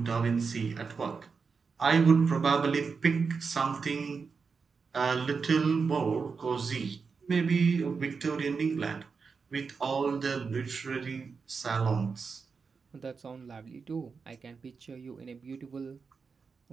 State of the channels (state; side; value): quieter; left; 5.2 dB